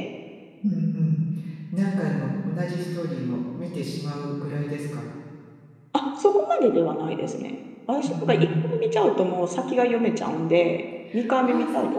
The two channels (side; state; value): both; identical; correlation 1.00